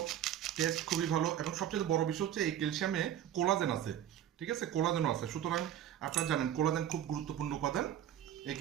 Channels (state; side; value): quieter; left; 10.8 dB